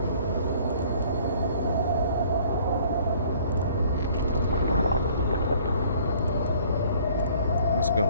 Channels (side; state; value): both; inverted; correlation -0.56